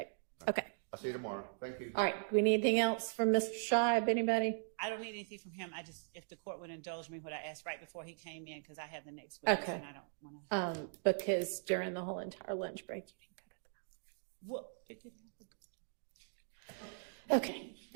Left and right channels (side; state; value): left; silent; digital silence